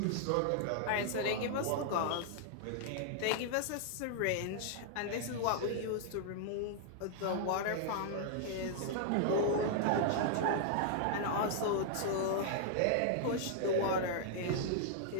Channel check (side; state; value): both; different; correlation -0.01